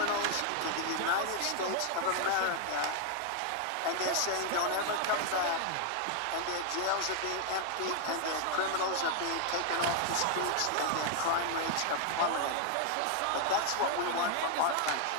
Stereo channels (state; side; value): different; both; correlation 0.00